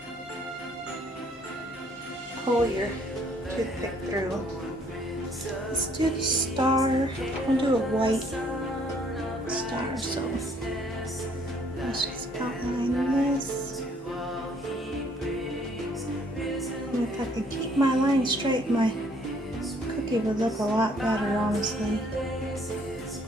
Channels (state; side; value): normal; both; correlation 0.63